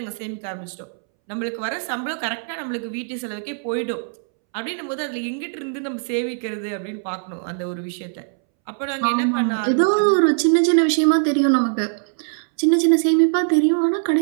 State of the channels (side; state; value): left; silent; 64 dB below the other